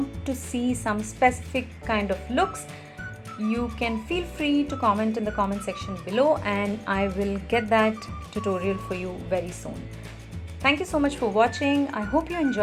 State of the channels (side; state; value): both; identical; correlation 1.00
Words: to see some specific kind of looks, you can feel free to comment in the comment section below, and I will get that tutorial for you very soon. Thank you so much for watching. I hope you